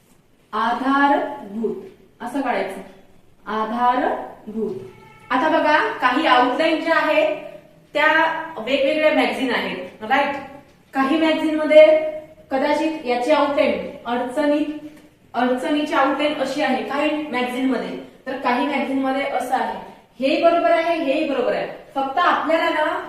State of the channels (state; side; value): identical; both; correlation 1.00